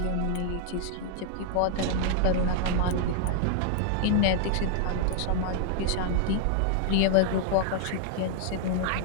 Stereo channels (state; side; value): different; both; correlation 0.00